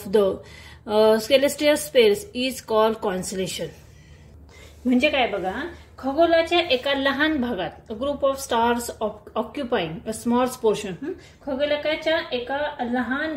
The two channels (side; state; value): both; identical; correlation 1.00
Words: the celestial space is called constellation. म्हणजे काय बघा, खगोलाच्या एका लहान भागात group of stars occupying a small portion, खगोलाच्या एका लहान